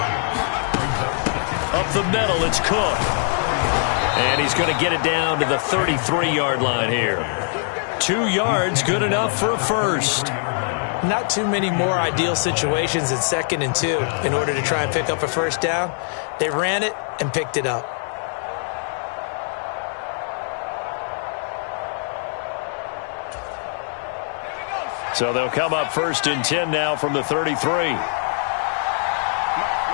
Up the middle, it's Cook. And he's going to get it down to the 33-yard line here. 2 yards, good enough for a first. Not too many more ideal situations in 2nd and 2 in order to try and pick up a 1st down. They ran it and picked it up. So they'll come up 1st and 10 now from the 33.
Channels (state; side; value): silent; right; 62 dB below the other